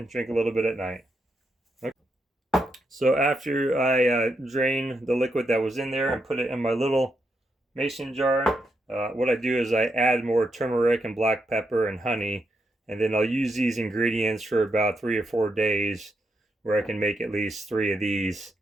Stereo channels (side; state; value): both; normal; correlation 0.82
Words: drink a little bit at night. Okay. So after I drain the liquid that was in there and put it in my little mason jar, what I do is I add more turmeric and black pepper and honey, and then I'll use these ingredients for about 3 or 4 days, where I can make at least 3 of these